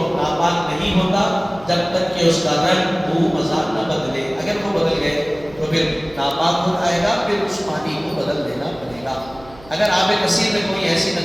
ناپاک نہیں ہوتا جب تک کہ اس کا رنگ، بو، مزاج نہ بدلے، اگر وہ بدل گئے تو پھر ناپاک ہو جائے گا، پھر اس پانی کو بدل دینا پڑے گا۔ اگر آب کثیر میں کوئی ایسی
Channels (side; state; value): right; noise; hum, 22 dB below the sound